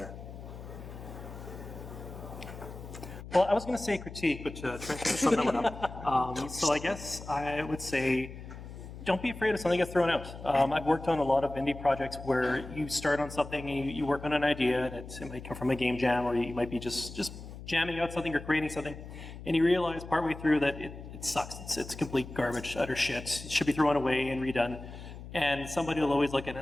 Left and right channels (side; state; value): left; noise; hum, 13 dB below the sound